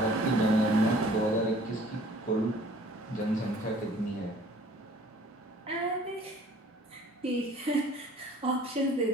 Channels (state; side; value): normal; both; correlation 0.52